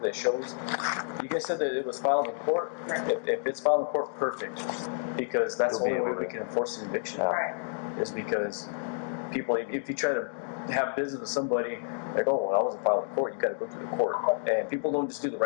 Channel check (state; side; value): silent; right; digital silence